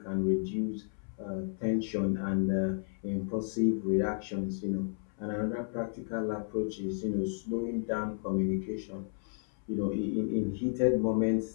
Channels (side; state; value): right; silent; 56 dB below the other